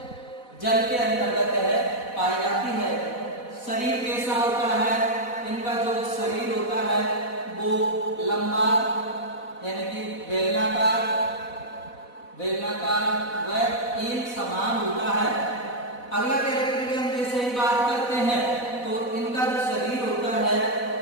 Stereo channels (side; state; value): right; late; 4.1 ms